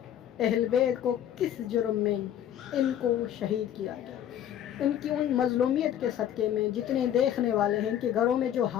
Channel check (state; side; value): quieter; right; 10.5 dB